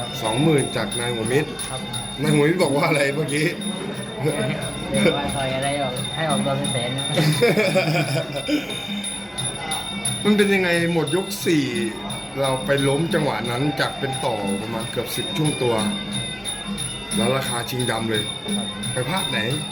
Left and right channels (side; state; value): both; identical; correlation 1.00